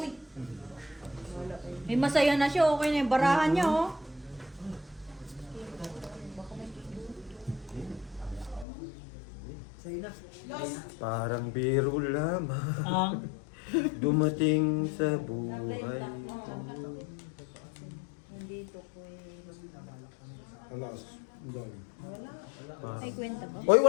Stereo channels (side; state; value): right; drops out; at 8.7 s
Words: Wala kayo. May masaya na siya, okay na yung barahan niya, oh. Sa'yo na. Parang biro lamang. Ang Dumating sa buhay. Nandito ko Alas. Dami. Ay, kwenta ba? Hoy,